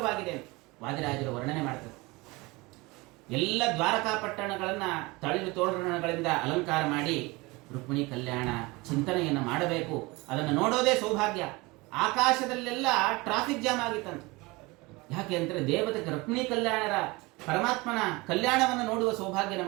ಅಂತ ವಾದಿರಾಜರು ವರ್ಣನೆ ಮಾಡ್ತಾರೆ. ಎಲ್ಲ ದ್ವಾರಕಾ ಪಟ್ಟಣಗಳನ್ನ ತಳಿರು ತೋರಣಗಳಿಂದ ಅಲಂಕಾರ ಮಾಡಿ ರುಕ್ಮಿಣಿ ಕಲ್ಯಾಣ ಚಿಂತನೆಯನ್ನು ಮಾಡಬೇಕು. ಅದನ್ನು ನೋಡೋದೇ ಸೌಭಾಗ್ಯ. ಆಕಾಶದಲ್ಲೆಲ್ಲ ಟ್ರಾಫಿಕ್ ಜಾಮ್ ಆಗಿತ್ತಂತ. ಯಾಕೆ ಅಂದ್ರೆ ದೇವತೆಗೆ ರುಕ್ಮಿಣಿ ಕಲ್ಯಾಣರ ಪರಮಾತ್ಮನ ಕಲ್ಯಾಣವನ್ನು ನೋಡುವ ಸೌಭಾಗ್ಯ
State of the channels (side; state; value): left; quieter; 23.8 dB